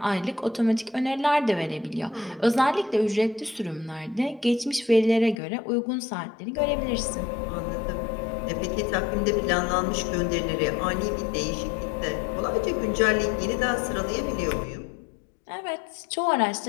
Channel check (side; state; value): right; drops out; at 5.4 s